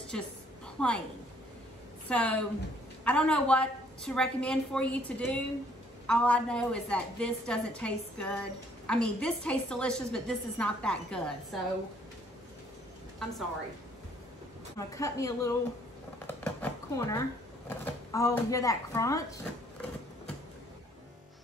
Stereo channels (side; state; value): both; normal; correlation 0.63